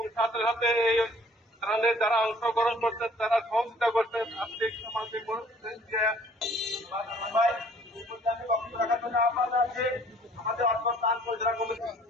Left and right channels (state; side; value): normal; both; correlation 0.56